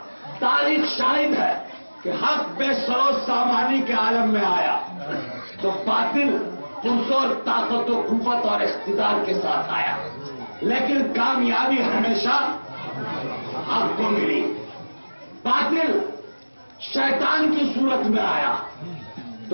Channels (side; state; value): both; inverted; correlation -1.00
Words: تاریخ شاہد ہے کہ حق بے سروس سامانی کے عالم میں آیا تو باطل پرزور طاقت و قوت اور اقتدار کے ساتھ آیا, لیکن کامیابی ہمیشہ حق کو ملی. باطل شیطان کی صورت میں آیا